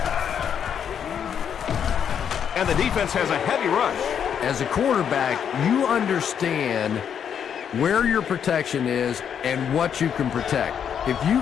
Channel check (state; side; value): quieter; right; 8.2 dB